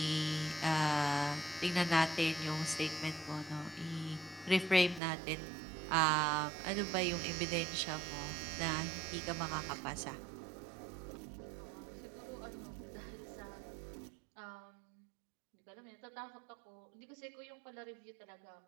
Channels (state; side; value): drops out; left; at 5.0 s